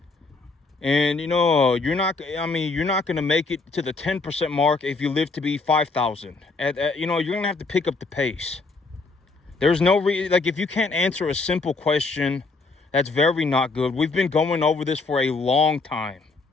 And, you know, you're not going to make it to the 10% mark if you live to be 5,000. You know, you're going to have to pick up the pace. There's no like, if you can't answer a simple question, that's very not good. We've been going over this for a long time.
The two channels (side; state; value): right; quieter; 3.8 dB